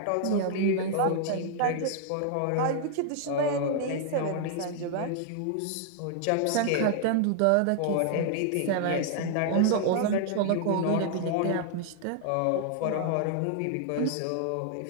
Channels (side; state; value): both; different; correlation 0.00